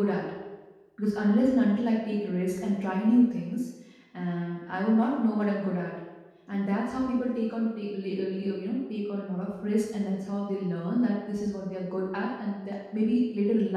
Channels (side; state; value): both; identical; correlation 1.00